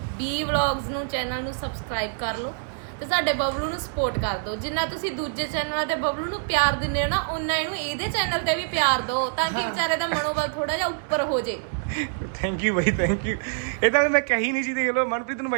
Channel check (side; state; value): left; silent; 61 dB below the other